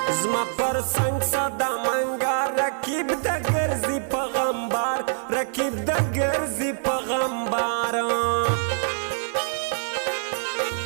زما پر سنگ صدا منگا رکیب دا گرزی پغمبار رکیب دا گرزی پغمبار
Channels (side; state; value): left; silent; digital silence